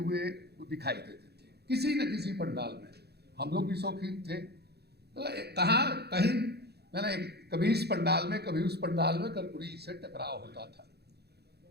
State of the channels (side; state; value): left; late; 0.48 ms